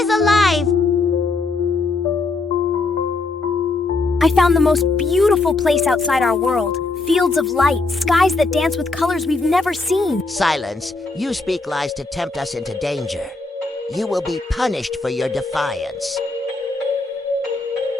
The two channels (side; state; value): right; quieter; 3.5 dB